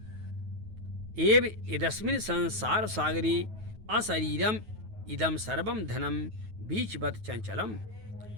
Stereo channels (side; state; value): left; late; 9.3 ms